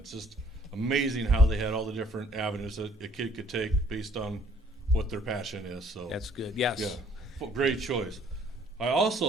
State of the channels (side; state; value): both; normal; correlation 0.59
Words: just amazing how they had all the different avenues that a kid could take based on what their passion is. So that's good. Yes. Yeah, great choice. I